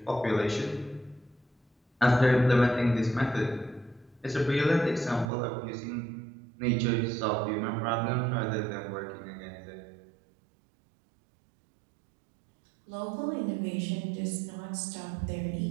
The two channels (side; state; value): left; drops out; at 5.3 s